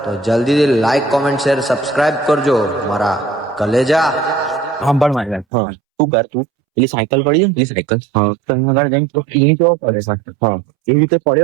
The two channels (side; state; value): left; drops out; at 5.5 s